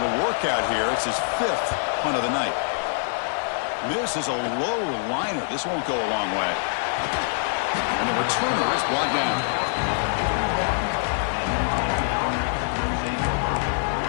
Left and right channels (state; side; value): silent; right; 56 dB below the other